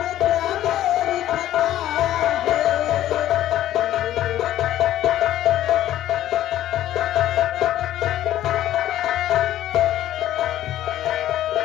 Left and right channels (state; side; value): quieter; right; 12.9 dB